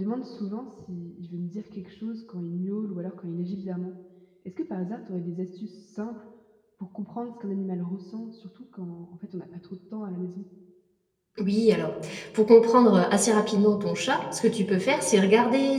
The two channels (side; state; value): both; identical; correlation 1.00